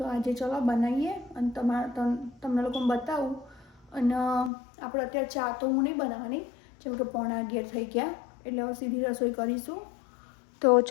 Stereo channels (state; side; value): drops out; right; at 4.5 s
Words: આજે ચલો બનાવીએ અને તમને લોકોને બતાવું. અને આપણે અત્યારે ચા તો હું નહીં બનાવવાની, જેમ કે 11:15 થઈ ગયા, એટલે હવે સીધી રસોઈ કરીશું. તો